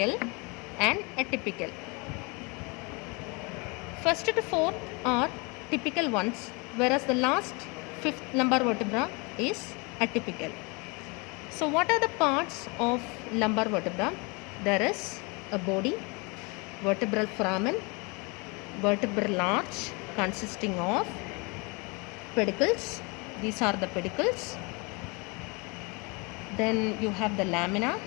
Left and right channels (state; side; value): quieter; right; 29.5 dB